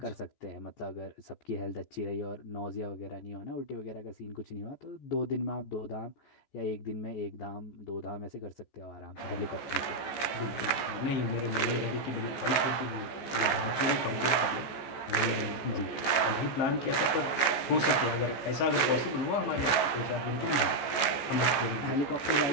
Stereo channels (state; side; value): late; right; 14 ms